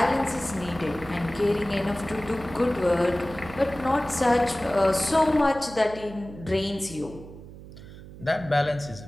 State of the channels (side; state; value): right; noise; hum, 16 dB below the sound